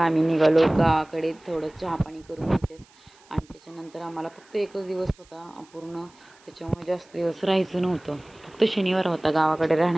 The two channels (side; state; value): right; noise; hiss, 29 dB below the sound